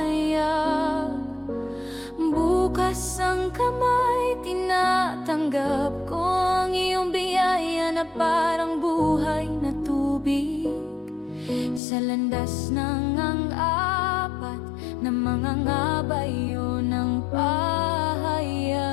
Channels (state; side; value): drops out; right; at 11.8 s